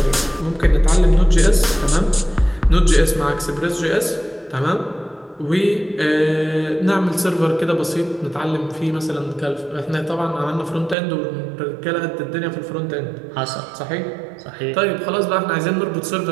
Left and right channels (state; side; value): drops out; left; at 11.0 s